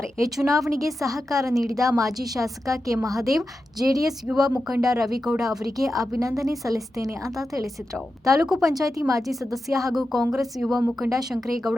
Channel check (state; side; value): normal; both; correlation 0.91